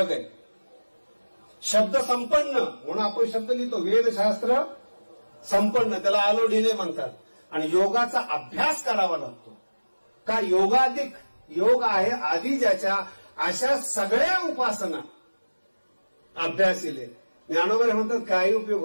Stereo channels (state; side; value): inverted; both; correlation -1.00